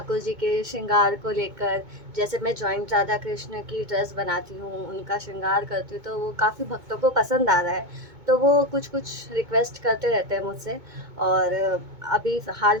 जी के श्रृंगार को लेकर। जैसे मैं जॉइंट राधा कृष्ण की ड्रेस बनाती हूँ, उनका श्रृंगार करती हूँ, तो वो काफ़ी भक्तों को पसंद आ रहा है। तो वो कुछ कुछ रिक्वेस्ट करते रहते हैं मुझसे। और अभी हाल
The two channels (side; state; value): left; late; 2.2 ms